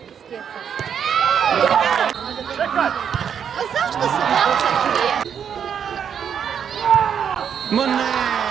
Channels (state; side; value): quieter; left; 7.9 dB